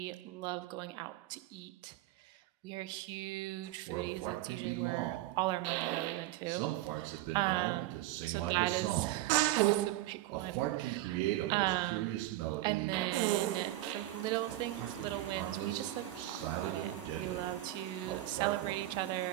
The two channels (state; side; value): quieter; left; 15.9 dB